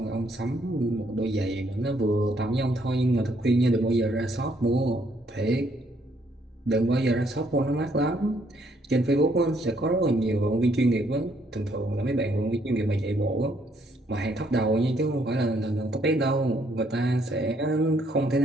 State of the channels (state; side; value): normal; both; correlation 0.69